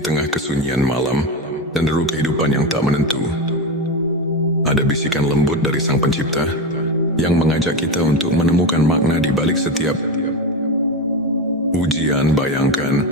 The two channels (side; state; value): both; normal; correlation 0.17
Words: tengah kesunyian malam dan deru kehidupan yang tak menentu, ada bisikan lembut dari Sang Pencipta yang mengajak kita untuk menemukan makna di balik setiap ujian. Bayangkan,